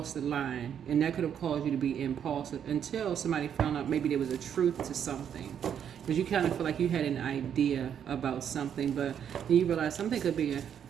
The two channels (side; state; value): left; quieter; 8.7 dB